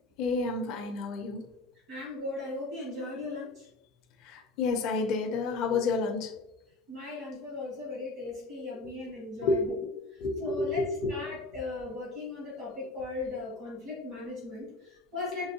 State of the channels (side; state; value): right; quieter; 3.2 dB